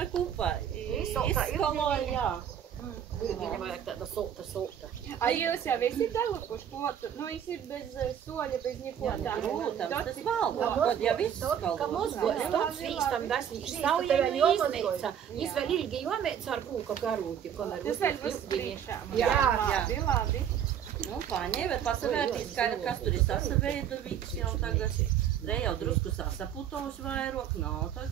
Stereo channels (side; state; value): left; quieter; 9.1 dB